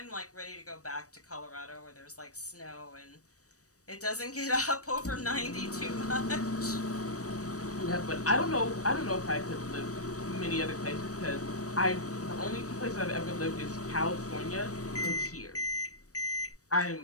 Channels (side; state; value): right; late; 0.66 ms